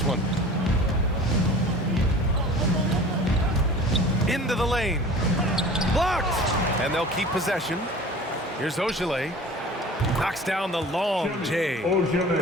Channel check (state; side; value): normal; both; correlation 0.42